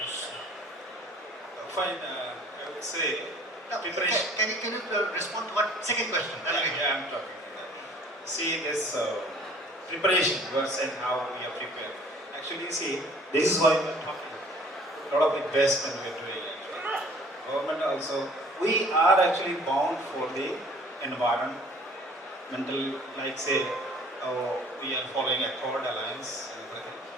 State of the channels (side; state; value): both; normal; correlation 0.53